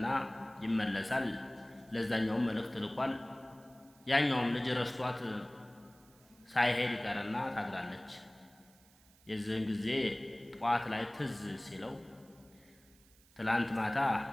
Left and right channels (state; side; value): noise; right; hiss, 28 dB below the sound